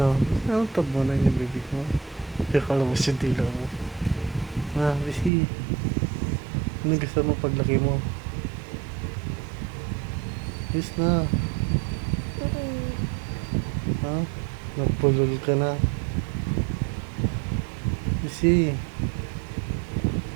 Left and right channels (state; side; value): drops out; left; at 5.3 s